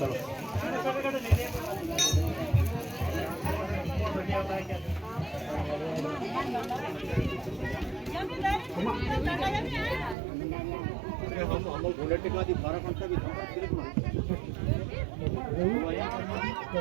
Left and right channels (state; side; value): drops out; left; at 10.2 s